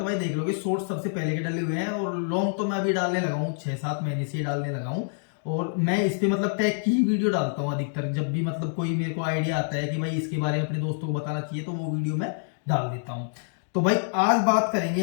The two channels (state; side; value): silent; right; digital silence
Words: भाई देख लोगे शॉर्ट्स सबसे पहले के डले हुए हैं, और लॉन्ग तो मैं अभी डालने लगा हूँ 6-7 महीने से ही डालने लगा हूँ। और मैं इस पे मतलब टैग की ही वीडियो डालता हूँ अधिकतर, जब भी मतलब कोई मेरे को आइडिया आता है कि भाई इसके बारे में अपने दोस्तों को बताना चाहिए तो वो वीडियो मैं डाल देता हूँ। तो भाई आज बात करेंगे